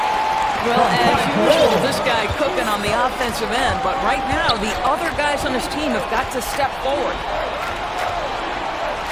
Well, as usual, this guy cooking on the offensive end, but right now the other guys on his team have got to step forward.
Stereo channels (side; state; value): both; identical; correlation 1.00